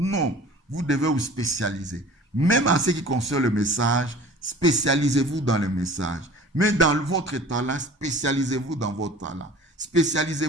vous devez vous spécialiser. Même en ce qui concerne le message, spécialisez-vous dans le message. Mais dans votre talent, spécialisez-vous dans votre talent.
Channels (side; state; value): both; normal; correlation 0.45